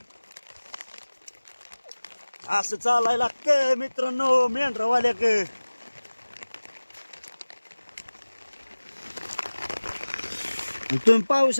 असं चालायला लागतं मित्रांनो मेंढरावाल्याक। तुम्ही पाहू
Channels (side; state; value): both; inverted; correlation -1.00